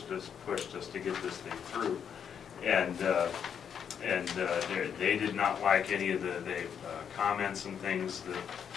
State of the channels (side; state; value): right; quieter; 7.8 dB